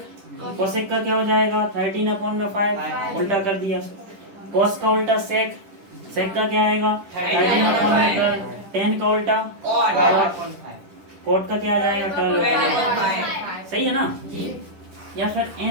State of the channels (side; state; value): left; late; 10 ms